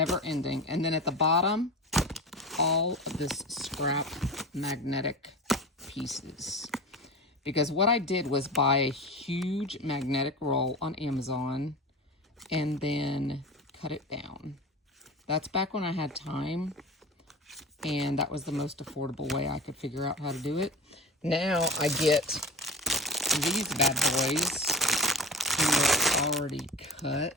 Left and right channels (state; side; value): normal; both; correlation 0.31